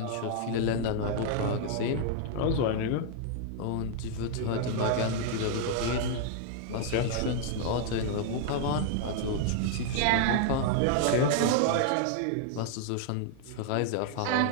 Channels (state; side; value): different; both; correlation -0.01